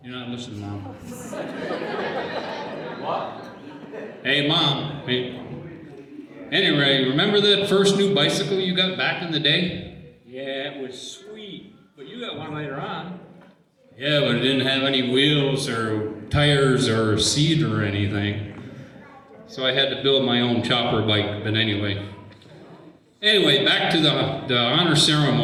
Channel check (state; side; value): identical; both; correlation 1.00